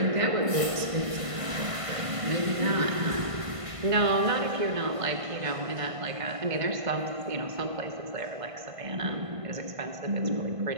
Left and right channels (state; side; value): late; left; 1.5 ms